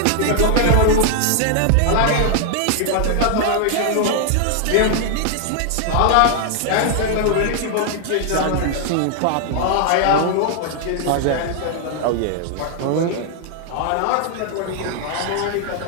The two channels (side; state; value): both; different; correlation 0.00